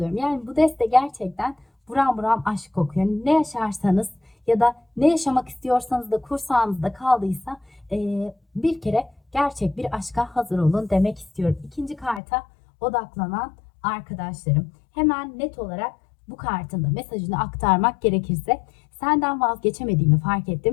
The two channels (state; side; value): drops out; right; at 12.2 s